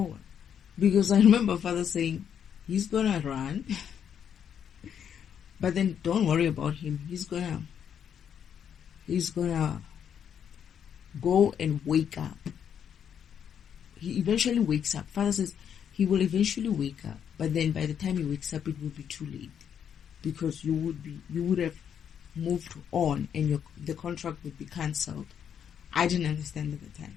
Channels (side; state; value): right; quieter; 8.4 dB